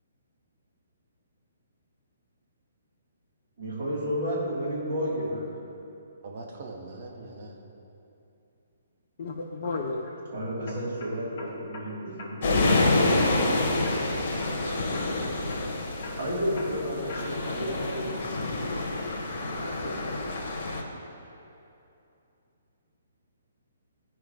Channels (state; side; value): inverted; both; correlation -0.70